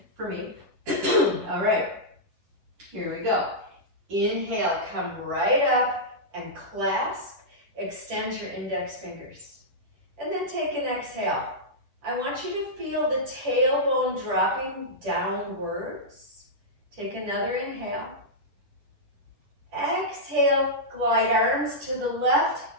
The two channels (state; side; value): late; left; 10 ms